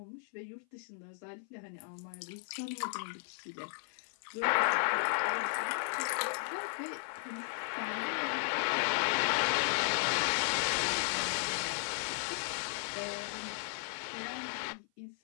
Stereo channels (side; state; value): right; silent; 54 dB below the other